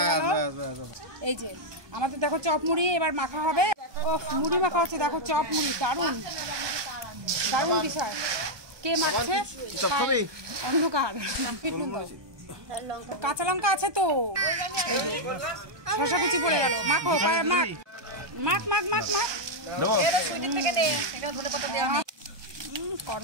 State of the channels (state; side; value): late; left; 1.2 ms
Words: গেল। এই যে আমাদের দেখো চপ মুড়ি এবার মাখা হবে। ও মুড়ি মাখা হচ্ছে, দেখো চপ মুড়ি, দারুণ দারুণ বিষয়। কে মাখছে? অন্ধকার। কাঁচা লঙ্কা আছে তো, শসা কুচি পড়ে গেল। মাখো, মাখ মাখ মাখ মাখ মাখ।